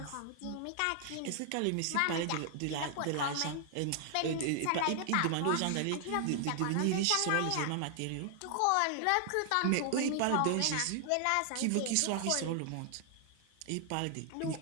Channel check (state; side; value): different; both; correlation 0.00